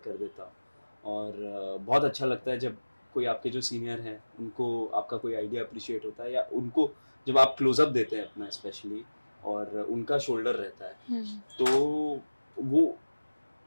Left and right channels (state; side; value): inverted; both; correlation -1.00